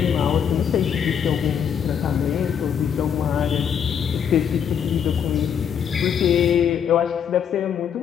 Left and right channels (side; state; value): right; quieter; 8.0 dB